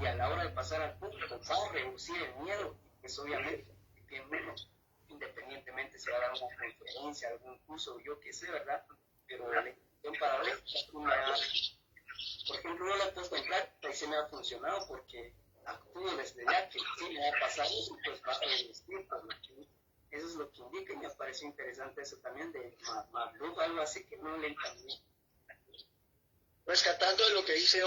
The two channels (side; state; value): both; identical; correlation 1.00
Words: a la hora de pasar al público va a reducir el miedo, pues obviamente tiene menos, independientemente si va a dar una conferencia, algún curso, yo qué sé, ¿verdad? Pero la intención paradójica, por ejemplo, yo la he puesto en práctica y se me ha funcionado porque actúo desde ya que si me va a pasar eso, pues va a resistir. Eso es lo que indica, y me pareció interesante eso también de Magluf, algo así que no le entendí. Rescatando de lo que dice